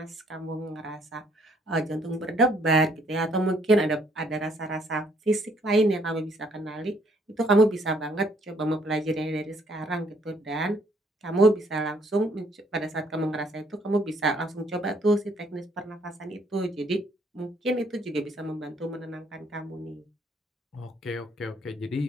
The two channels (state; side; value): normal; both; correlation 0.65